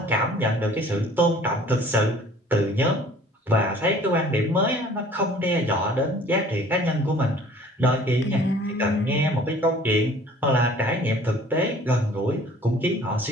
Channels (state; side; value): normal; both; correlation 0.51